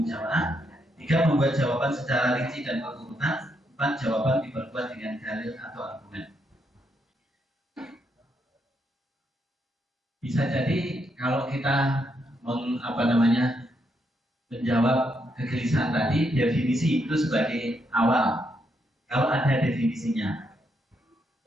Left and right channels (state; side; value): normal; both; correlation 0.78